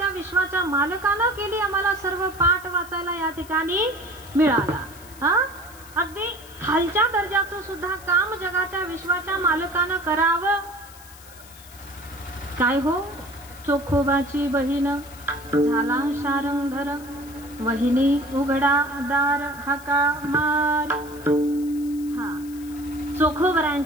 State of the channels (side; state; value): left; noise; hiss, 20 dB below the sound